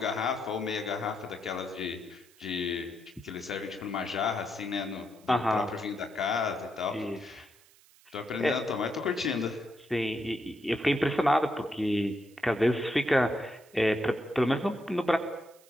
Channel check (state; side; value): noise; right; hiss, 27 dB below the sound